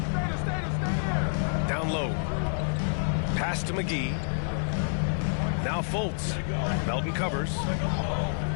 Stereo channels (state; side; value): silent; right; 59 dB below the other